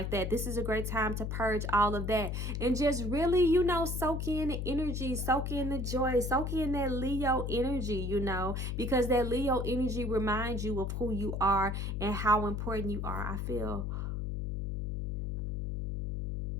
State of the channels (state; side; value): noise; left; hum, 2 dB below the sound